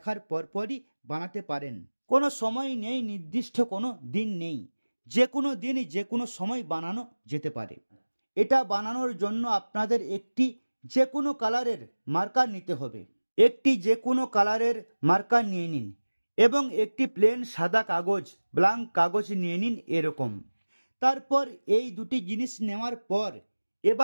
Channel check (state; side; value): inverted; both; correlation -1.00